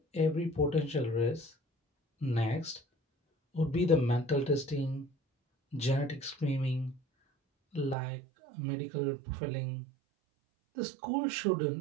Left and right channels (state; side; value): drops out; left; at 8.0 s